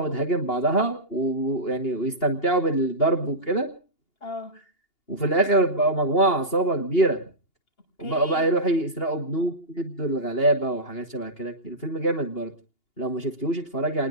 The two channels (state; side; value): late; right; 2.8 ms